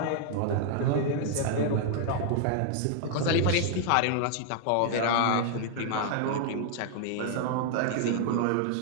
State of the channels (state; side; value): different; both; correlation 0.00